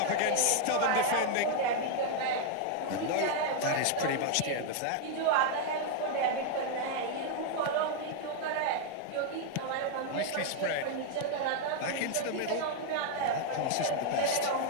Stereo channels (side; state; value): both; different; correlation 0.00